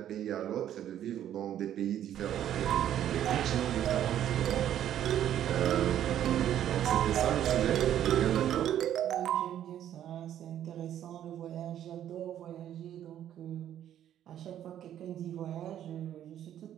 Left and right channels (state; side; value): quieter; left; 10.9 dB